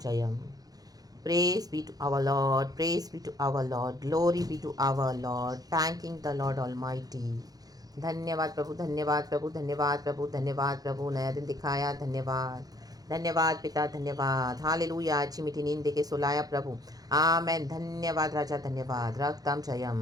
Praise be to our Lord, praise be to our Lord, glory be to our Lord, thanking the Lord Almighty। धन्यवाद प्रभु, धन्यवाद प्रभु, धन्यवाद प्रभु, धन्यवाद प्रभु, नया दिन दिखाया, धन्यवाद। धन्यवाद पिता, धन्यवाद। हालेलुया, अच्छी मीठी नींद देके सुलाया प्रभु। आमेन, धन्यवाद राजा, धन्यवाद। रक्तम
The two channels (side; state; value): left; late; 0.18 ms